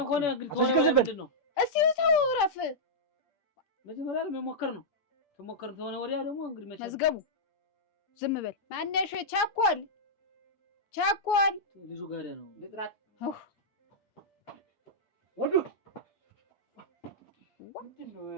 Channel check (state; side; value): late; right; 8.5 ms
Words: ሆነ ግን ሆነ ምንድን ነው? እስቲ ተው እረፍ። መጀመሪያ መሞከር ነው። ተሞከር ተሆነ ወዲያ ደግሞ እንግዲህ መዝገቡ ዝም በል። ማነሽ? ቸኮል ልጁ ጋር ነው ልጥራት ወዱ